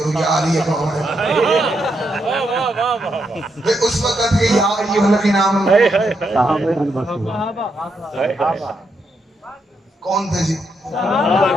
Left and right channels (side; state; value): both; normal; correlation 0.80